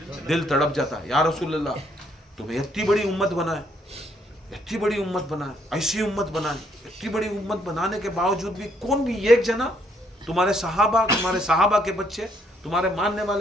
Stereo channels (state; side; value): normal; both; correlation 0.69